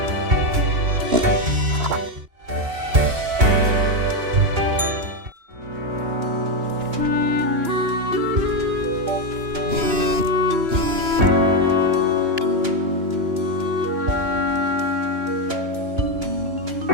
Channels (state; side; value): late; left; 2.9 ms